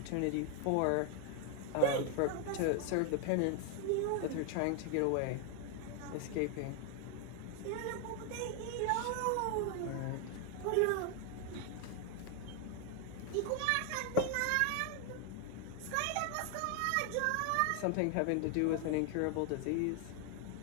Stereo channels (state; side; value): different; both; correlation 0.00